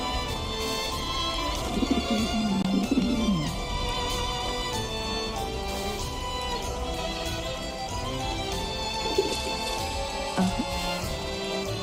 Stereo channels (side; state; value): both; identical; correlation 1.00